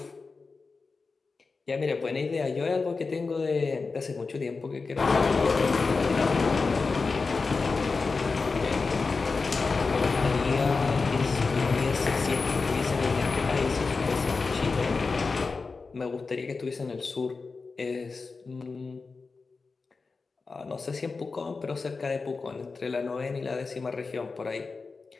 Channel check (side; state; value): right; quieter; 4.3 dB